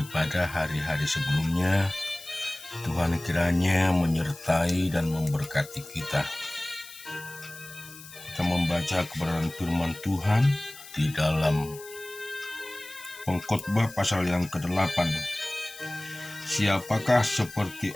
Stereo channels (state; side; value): noise; left; hiss, 17 dB below the sound